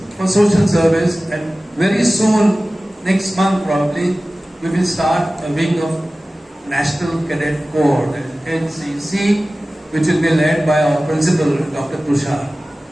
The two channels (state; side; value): normal; both; correlation 0.97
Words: for social service, and very soon, next month probably, we will start a wing of National Cadet Corps, that is NCC, which will be led by our principal, Dr. Tushar.